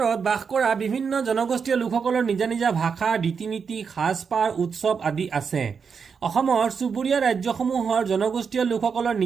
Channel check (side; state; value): left; quieter; 6.0 dB